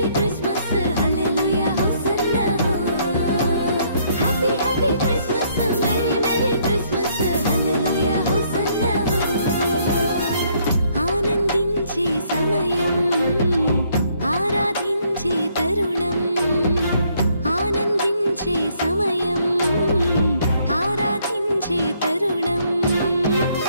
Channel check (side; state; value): both; inverted; correlation -0.68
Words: Christmas హల్లెలూయా హోసన్నా happy happy Christmas merry merry Christmas హల్లెలూయా హోసన్నా ఆనందించే సమయం ఆరాధించే తరుణం ఆనందించే సమయం ఆరాధించే తరుణం